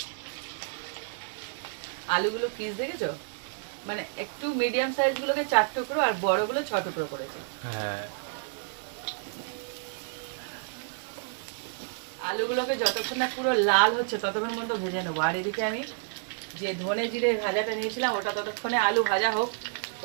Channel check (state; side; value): silent; left; digital silence